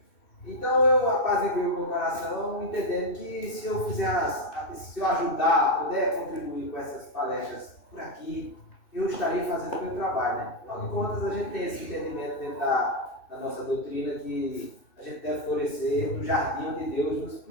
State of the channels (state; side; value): late; right; 2.6 ms